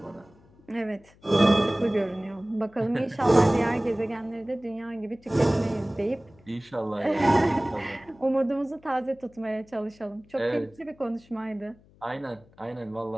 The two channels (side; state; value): left; noise; hum, 28 dB below the sound